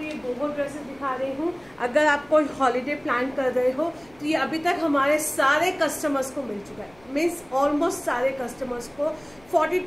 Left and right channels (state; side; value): noise; left; hum, 28 dB below the sound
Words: ये बोहो ड्रेसेस दिखा रही हूँ। अगर आप कोई हॉलीडे प्लान कर रहे हो तो ये अभी तक हमारे सारे कस्टमर्स को मिल चुका है, मीन्स ऑलमोस्ट सारे कस्टमर्स को।